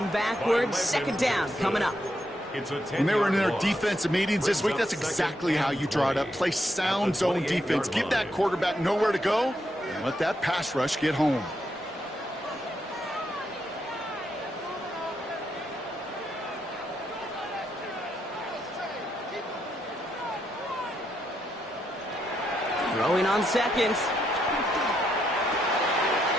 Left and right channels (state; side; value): normal; both; correlation 0.79